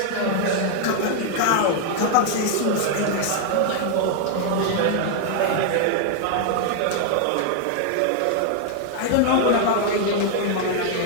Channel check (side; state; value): both; different; correlation 0.00